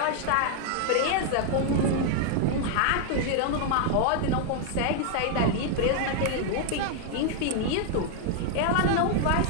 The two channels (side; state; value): both; different; correlation 0.00